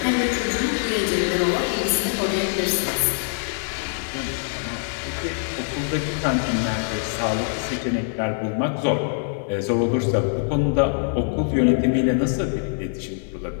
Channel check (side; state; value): right; silent; digital silence